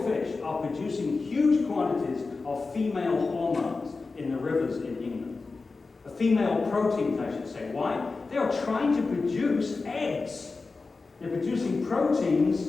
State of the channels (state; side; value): quieter; right; 4.0 dB